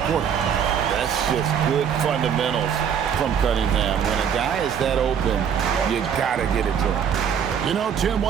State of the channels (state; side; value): quieter; left; 8.0 dB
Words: quarter. That's just good fundamentals from Cunningham. When a guy is that open, you gotta get it to him. You know, Tim,